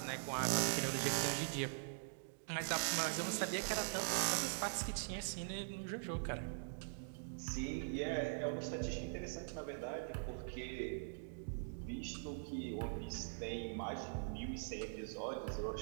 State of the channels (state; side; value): silent; left; digital silence